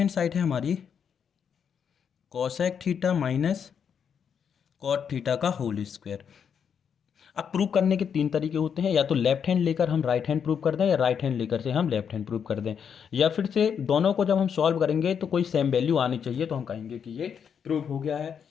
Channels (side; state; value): right; quieter; 7.4 dB